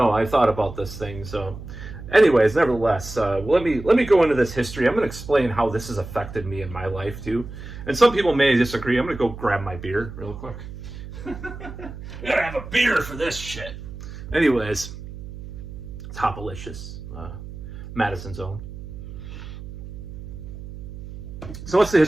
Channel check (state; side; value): noise; right; hum, 12 dB below the sound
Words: I thought about this thing. So anyways, nevertheless, let me go into this history. I'm going to explain how this has affected me in my life too. And some people may disagree. I'm going to go grab my beer real quick. Gotta have a beer for this shit. Anyways, it's Hopalicious, Madison's own. So what's the